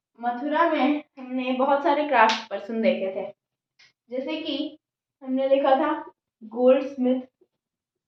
मथुरा में हमने बहुत सारे क्राफ्ट पर्सन देखे थे। जैसे कि हमने देखा था गोल्ड स्मिथ,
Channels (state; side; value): identical; both; correlation 1.00